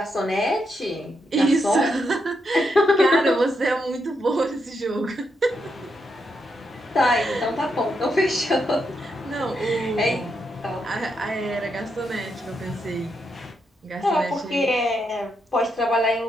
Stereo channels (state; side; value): normal; both; correlation 0.81